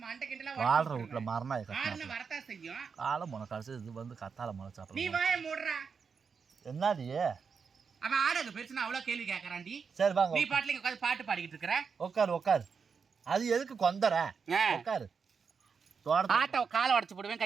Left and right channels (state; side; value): quieter; left; 5.8 dB